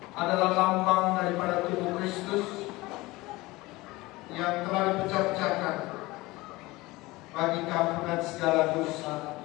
adalah lambang daripada tubuh Kristus yang telah dipecah-pecahkan bagi keampunan segala dosa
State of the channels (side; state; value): right; quieter; 20.7 dB